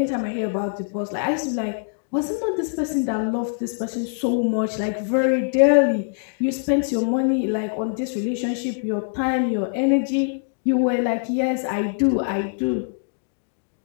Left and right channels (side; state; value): right; silent; digital silence